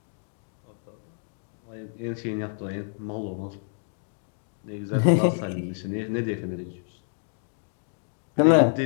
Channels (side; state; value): right; silent; digital silence